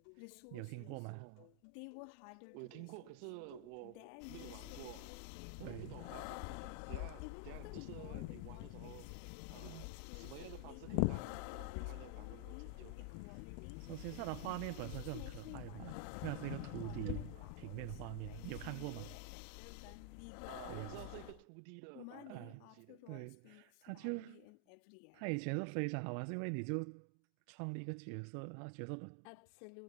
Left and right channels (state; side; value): different; both; correlation 0.00